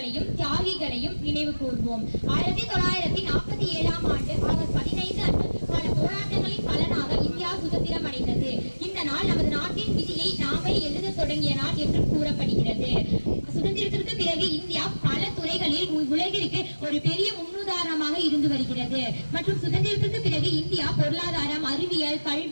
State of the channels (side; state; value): both; inverted; correlation -1.00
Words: தியாகிகளையும் நினைவு கூர்வோம். 1947ஆம் ஆண்டு ஆகஸ்ட் 15 அன்று பல போராட்டங்களின் பலனாக இந்தியா சுதந்திரம் அடைந்தது. இந்த நாள் நமது நாட்டின் விதியை நாமே எழுத தொடங்கிய நாள் என்று கூறப்படுகிறது. சுதந்திரத்திற்கு பிறகு இந்தியா பல துறைகளில் உலகிற்கு ஒரு பெரிய முன்னுதாரணமாக இருந்து வருகிறது. மற்றும் சுதந்திரத்திற்கு பிறகு இந்தியா பொருளாதாரம், அறிவியல்,